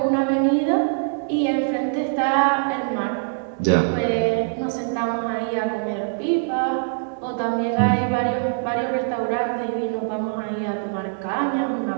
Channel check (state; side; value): silent; left; digital silence